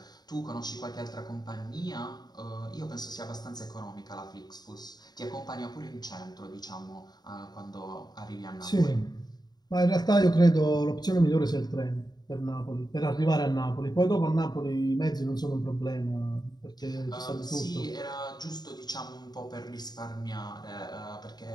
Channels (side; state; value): right; late; 0.20 ms